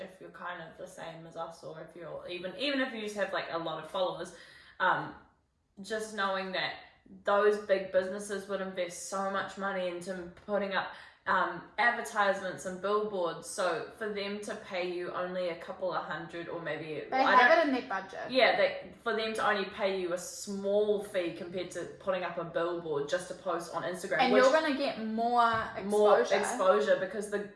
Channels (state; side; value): identical; both; correlation 1.00